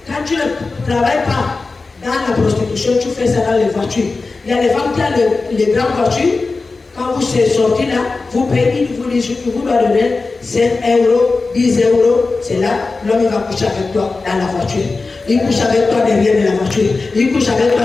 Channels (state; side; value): quieter; right; 3.9 dB